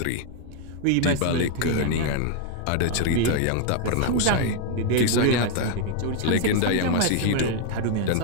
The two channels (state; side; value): different; both; correlation 0.00